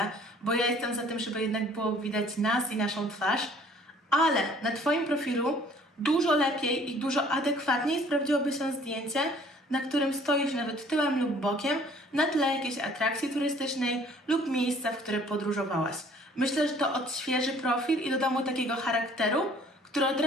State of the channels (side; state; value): both; normal; correlation 0.55